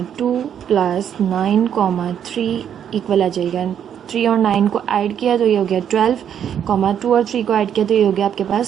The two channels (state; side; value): quieter; left; 9.0 dB